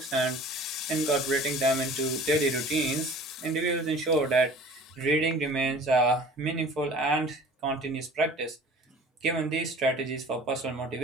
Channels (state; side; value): normal; both; correlation 0.45